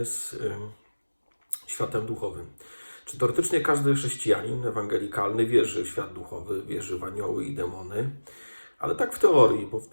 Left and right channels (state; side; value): inverted; both; correlation -1.00